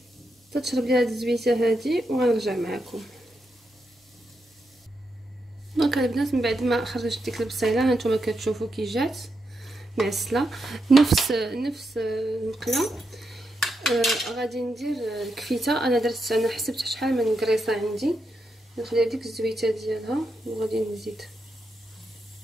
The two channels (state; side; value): normal; both; correlation 0.84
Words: تشرب ليها هاد الزويته هادي وغنرجع معكم. دونك البنات من بعد ما خرجت ديك البصيله هانتوما كتشوفوا كي جات معسله نفس المقله. غادي ندير الكفيته. انا حسبت شحال من كريصه عندي، نخلي ديك الزويته ديالها وغادي نزيد